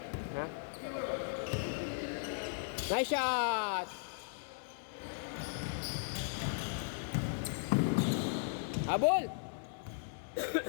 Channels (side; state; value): right; silent; digital silence